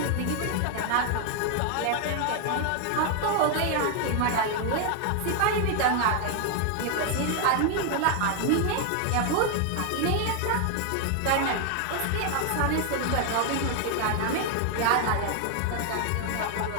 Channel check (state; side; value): different; both; correlation 0.00